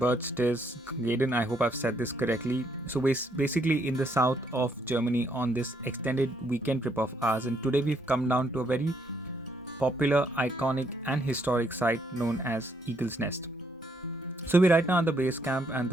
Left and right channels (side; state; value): both; normal; correlation 0.72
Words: I hope I've said this correctly. So basically in the south of Germany on this extended weekend trip of ours, and today we've come down to a very popular, iconic and historic site known as Eagle's Nest. So we're right now at the base camp, and